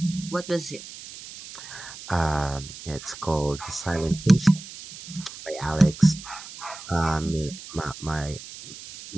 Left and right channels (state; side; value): noise; right; hiss, 14 dB below the sound